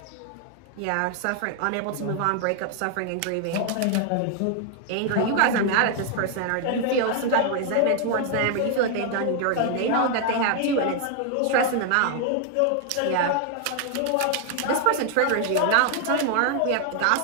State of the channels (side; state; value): both; different; correlation 0.00